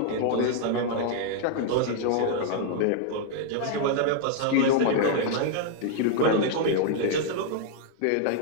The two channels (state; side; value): different; both; correlation -0.01